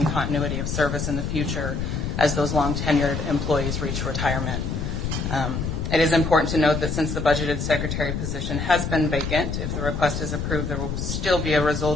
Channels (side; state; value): left; noise; rumble, 3 dB below the sound